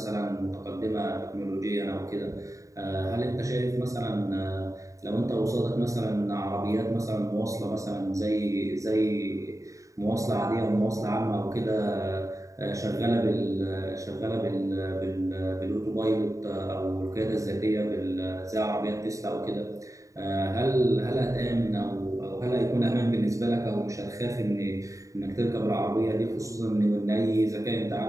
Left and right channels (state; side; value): late; left; 0.16 ms